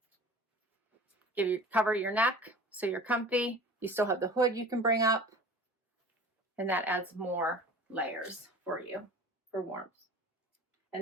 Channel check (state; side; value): normal; both; correlation 0.41